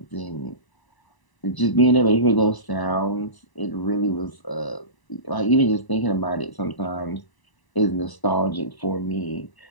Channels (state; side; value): late; right; 1.0 ms